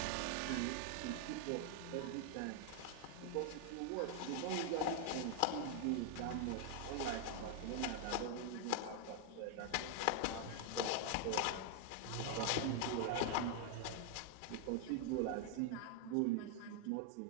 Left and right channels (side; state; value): both; different; correlation 0.00